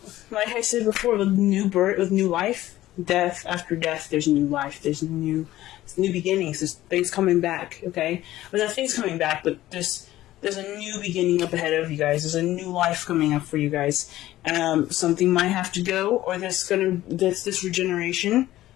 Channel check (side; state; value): right; quieter; 15.0 dB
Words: like I said before, with new birth, with new life, death after death, there's new life. There's new beginnings. There's things coming back. Okay, well, not things coming back, but there's a new beginning up ahead of you guys. There's a new life coming up for you guys. Something might have to go, or this regeneration,